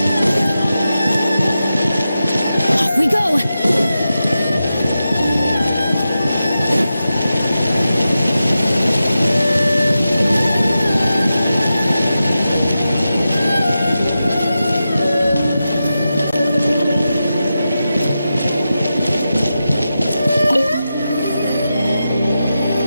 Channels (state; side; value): inverted; both; correlation -0.91